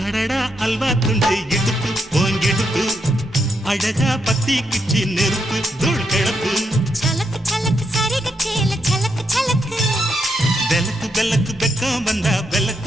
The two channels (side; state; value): both; normal; correlation 0.80